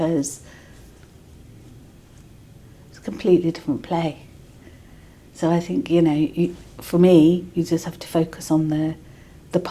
it's a completely different play. So I think, for me, you just have to focus on the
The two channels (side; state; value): both; identical; correlation 1.00